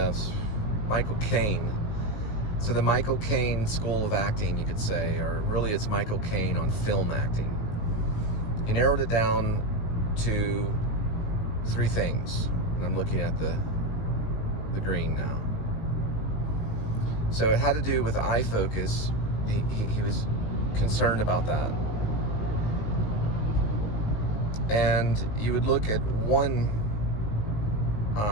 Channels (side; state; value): right; late; 19 ms